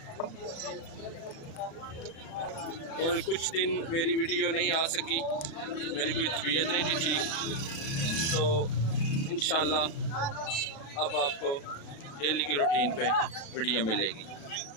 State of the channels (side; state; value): right; late; 36 ms